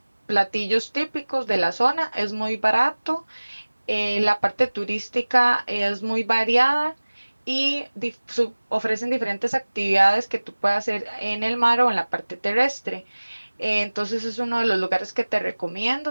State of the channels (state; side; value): inverted; both; correlation -1.00